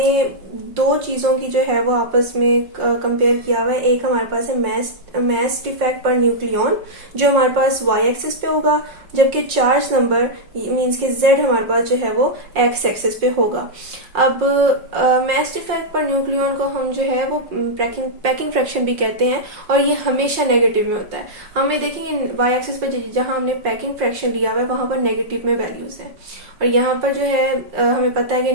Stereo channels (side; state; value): left; late; 5.6 ms